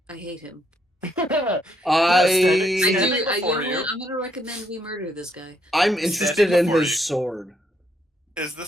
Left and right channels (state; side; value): normal; both; correlation 0.73